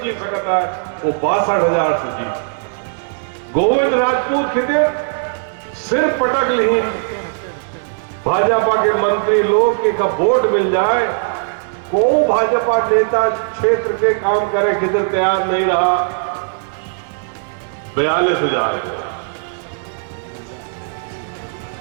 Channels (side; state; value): left; silent; 65 dB below the other